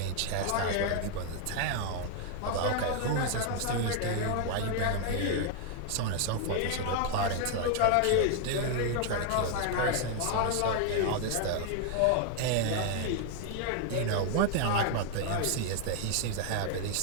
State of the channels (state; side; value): different; both; correlation 0.00